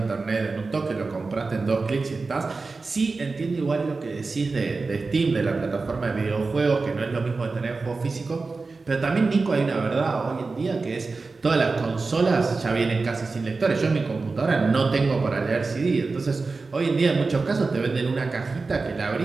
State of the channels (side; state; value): left; quieter; 4.0 dB